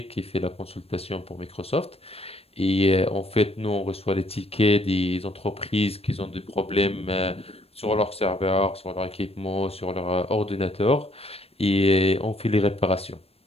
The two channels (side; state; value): right; late; 0.29 ms